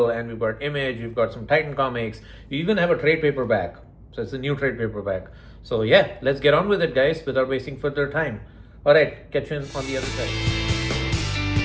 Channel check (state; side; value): identical; both; correlation 1.00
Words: and we've got Image, we've got some Titan comics. We even have a trade paperback. So it's a new trade paperback. So yeah, let's get on with it, guys, without wasting further time. Alright, catch you on the other side.